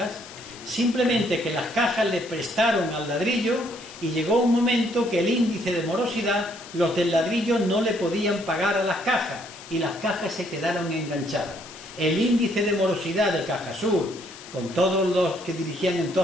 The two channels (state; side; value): noise; left; hiss, 17 dB below the sound